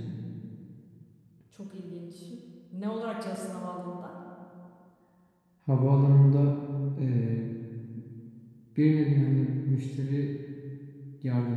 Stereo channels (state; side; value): identical; both; correlation 1.00